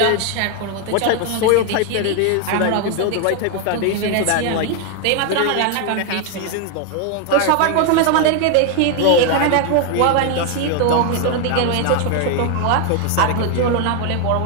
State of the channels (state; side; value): different; both; correlation 0.00